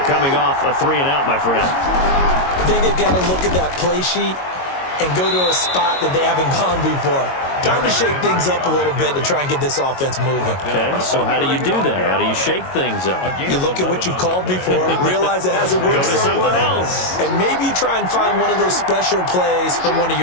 coming off a 3-and-out, my friend. I think they've got to look at that play sheet and go to a spot that they haven't gone before. Time to shake things up a little bit to try and get this offense moving. Okay, so how do you do that? How do you shake things up? You look at what you've called before, realize it hasn't worked so well, and maybe try and find one of those special plays from one of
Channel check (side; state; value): right; late; 22 ms